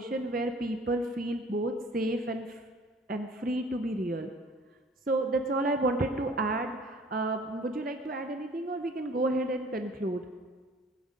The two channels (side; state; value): both; normal; correlation 0.52